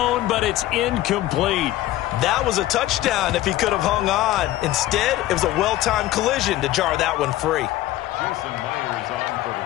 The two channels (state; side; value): quieter; right; 15.2 dB